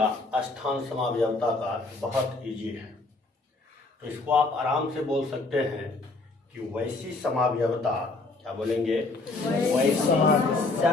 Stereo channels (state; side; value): quieter; right; 3.3 dB